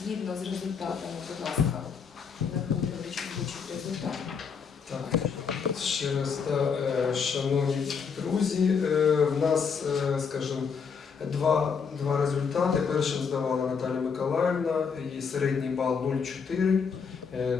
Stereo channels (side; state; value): right; quieter; 6.1 dB